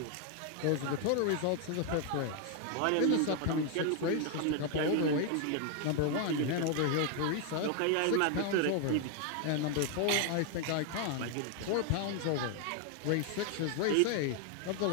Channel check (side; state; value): both; different; correlation 0.01